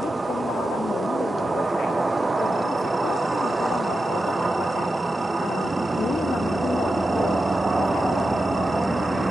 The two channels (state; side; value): normal; both; correlation 0.90